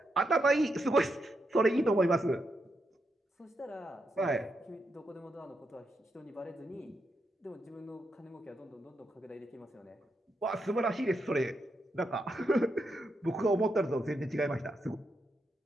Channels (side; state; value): both; normal; correlation 0.83